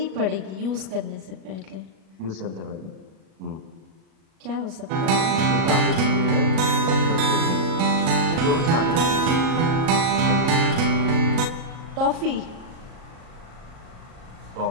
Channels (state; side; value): late; left; 37 ms